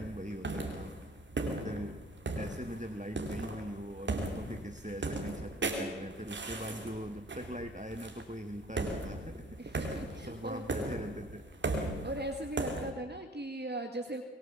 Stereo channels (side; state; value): both; normal; correlation 0.51